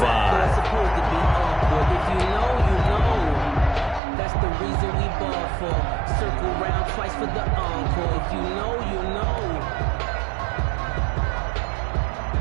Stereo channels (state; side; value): drops out; left; at 4.0 s